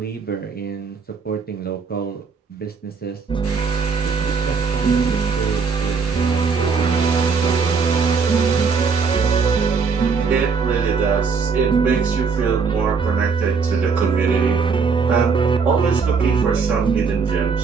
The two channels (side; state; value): left; quieter; 5.3 dB